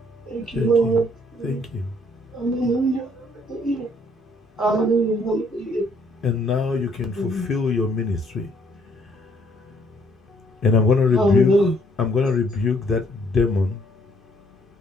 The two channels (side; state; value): both; normal; correlation 0.65